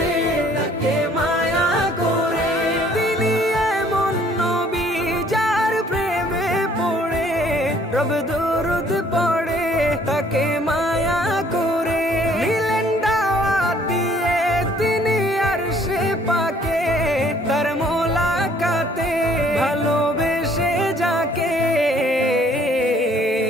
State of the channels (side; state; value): both; normal; correlation 0.60